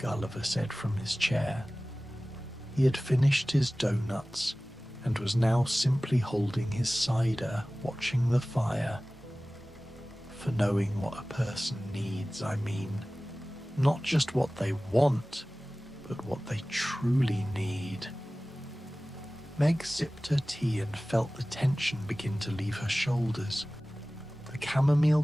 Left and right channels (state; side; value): normal; both; correlation 0.97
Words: said from his chair. He had finished his doughnuts and was now simply holding his cider, watching the fire. For knowing what a person needs, I mean. Not just what they want, but what they truly need. Meg sipped her tea and felt the tension begin to leave her shoulders. The chamomile